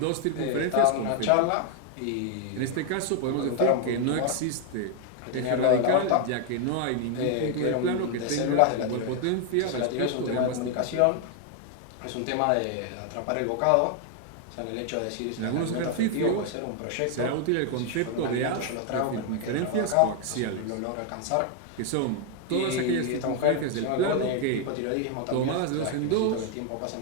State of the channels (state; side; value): different; both; correlation 0.00